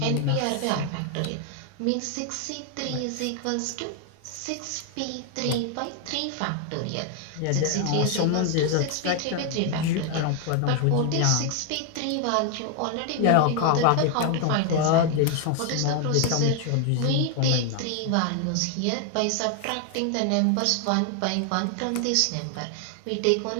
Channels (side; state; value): both; different; correlation 0.00